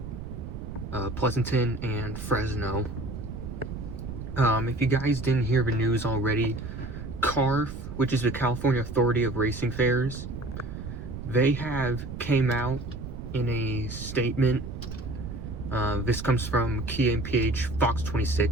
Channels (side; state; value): right; noise; rumble, 8 dB below the sound